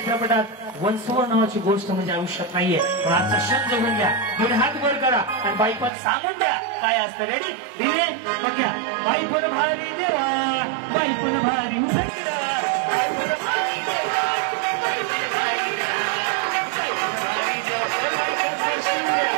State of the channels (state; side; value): drops out; left; at 5.9 s